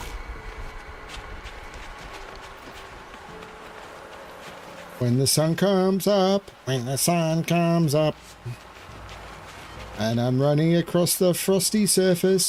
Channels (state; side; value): identical; both; correlation 1.00